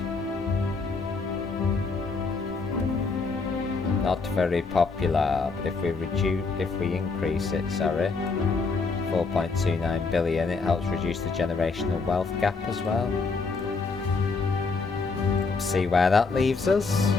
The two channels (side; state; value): right; quieter; 4.3 dB